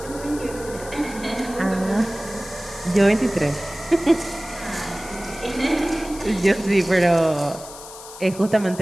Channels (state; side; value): noise; left; hiss, 15 dB below the sound